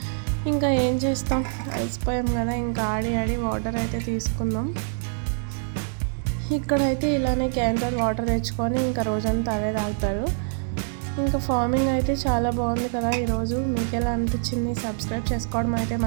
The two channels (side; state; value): left; silent; digital silence